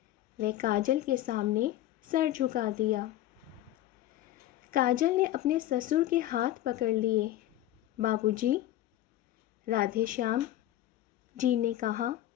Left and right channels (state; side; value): quieter; right; 13.9 dB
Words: वह काजल के सामने सर झुका दिया। काजल ने अपने ससुर के हाथ पकड़ लिए। बाबूजी, राधेश्याम जी ने कहा।